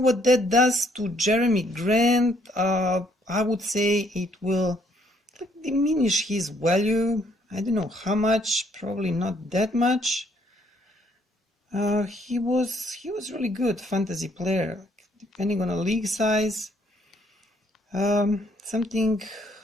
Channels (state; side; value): normal; both; correlation 0.67